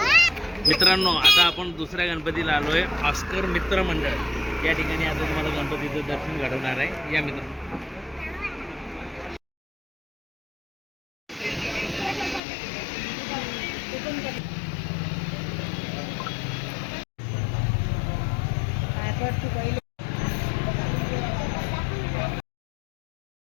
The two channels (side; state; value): right; drops out; at 12.4 s